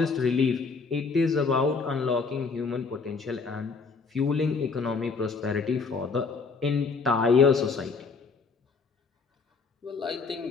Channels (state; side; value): quieter; right; 4.7 dB